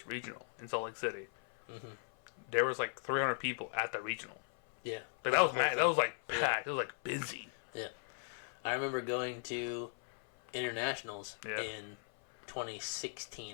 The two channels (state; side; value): silent; right; 52 dB below the other